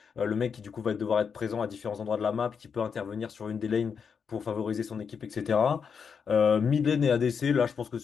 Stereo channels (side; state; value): right; quieter; 6.4 dB